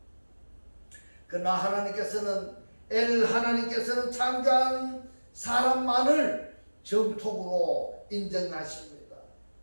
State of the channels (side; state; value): both; inverted; correlation -1.00